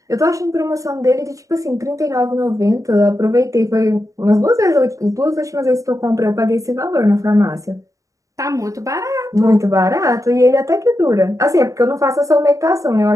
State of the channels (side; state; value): left; late; 0.16 ms